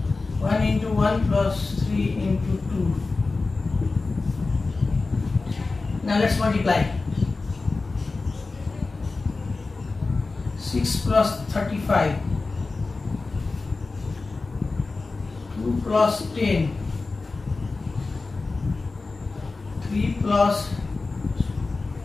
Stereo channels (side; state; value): right; quieter; 3.7 dB